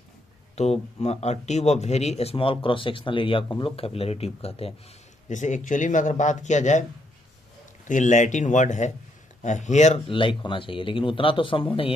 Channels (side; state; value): both; normal; correlation 0.75